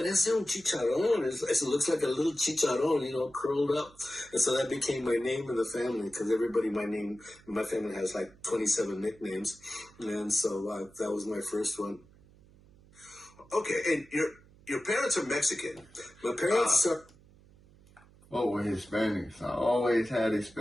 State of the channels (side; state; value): right; noise; hum, 26 dB below the sound